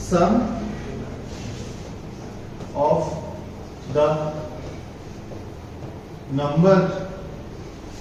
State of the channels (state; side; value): identical; both; correlation 1.00